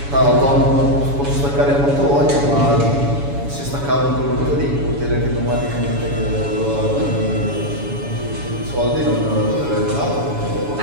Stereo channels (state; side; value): late; left; 7.1 ms